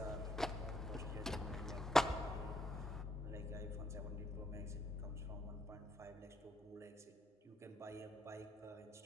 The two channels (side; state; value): both; normal; correlation 0.74